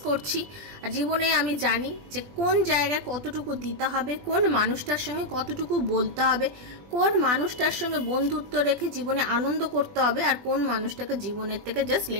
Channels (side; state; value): left; late; 20 ms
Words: করছি। আর জীবনে আমি জানি যে কোন জায়গায় কতটুকু দিতে হবে, কোন মানুষটার সঙ্গে কতটুকু বলতে হবে, কোন মানুষটার সঙ্গে বন্ধুত্ব রেখে জীবনে আনন্দ করতে হবে, আর কোন মানুষটাকে জীবনের থেকে জাস্ট